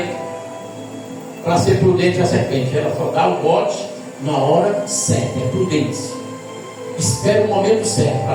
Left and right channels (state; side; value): identical; both; correlation 1.00